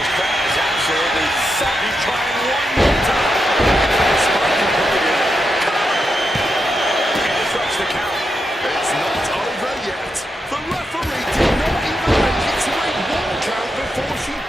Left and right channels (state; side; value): normal; both; correlation 0.85